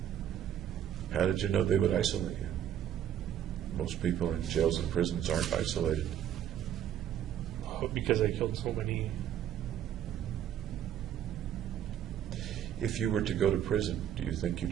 How did you know they would isolate you? Most people in jails and prisons aren't isolated. Because I killed so many. If you were to go to prison, do you think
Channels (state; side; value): quieter; left; 10.3 dB